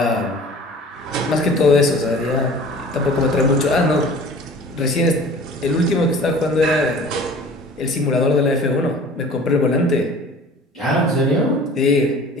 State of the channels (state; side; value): normal; both; correlation 0.44